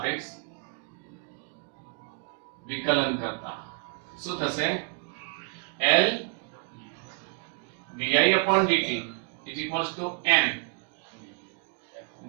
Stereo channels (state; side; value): quieter; left; 37.9 dB